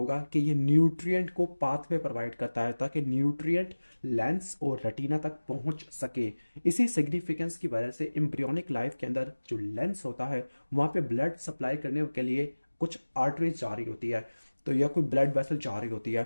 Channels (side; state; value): both; inverted; correlation -1.00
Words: कि ये न्यूट्रिएंट को पाथवे प्रोवाइड करता है ताकि न्यूट्रिएंट लेंस और रेटिना तक पहुंच सके। इसी सिग्निफिकेंस की वजह से एम्ब्रियोनिक लाइफ के अंदर जो लेंस होता है वहां पे ब्लड सप्लाई करने के लिए कुछ आर्टरीज जा रही होती है, तो या कोई ब्लड वेसल जा रही होती